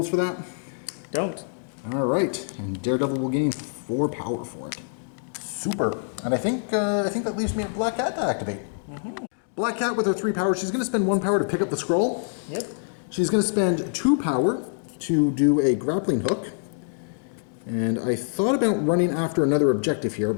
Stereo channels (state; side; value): silent; right; digital silence